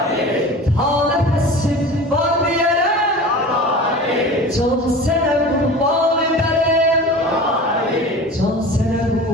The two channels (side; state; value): both; normal; correlation 0.36